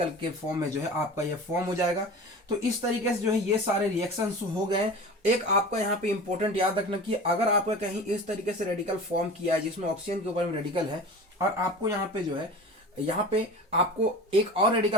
के फॉर्म में जो है आपका ये फॉर्म हो जाएगा। तो इस तरीके से जो है ये सारे रिएक्शंस हो गए। एक आपका यहाँ पे इंपॉर्टेंट याद रखना कि अगर आपका कहीं इस तरीके से रेडिकल फॉर्म किया है जिसमें ऑक्सीजन के ऊपर में रेडिकल है, और आपको यहाँ पे जो है यहाँ पे आपको एक और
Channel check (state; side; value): normal; both; correlation 0.36